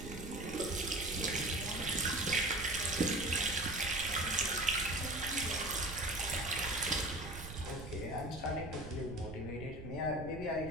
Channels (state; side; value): noise; right; rumble, 11 dB below the sound